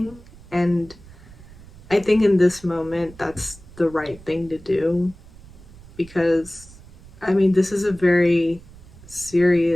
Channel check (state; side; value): noise; right; rumble, 20 dB below the sound